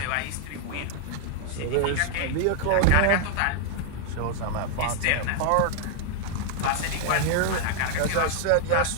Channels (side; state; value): both; different; correlation 0.00